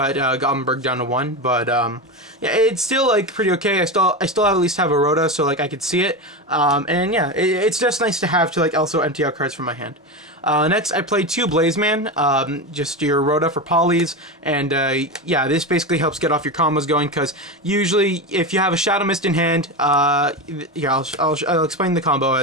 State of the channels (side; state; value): both; normal; correlation 0.19